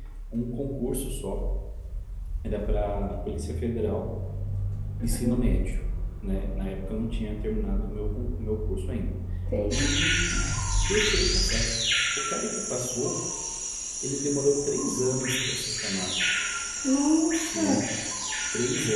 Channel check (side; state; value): both; identical; correlation 1.00